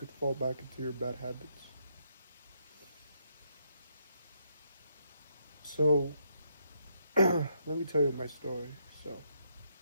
fall back into your bad habits. So, let me tell you my story. So,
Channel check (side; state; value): both; inverted; correlation -0.76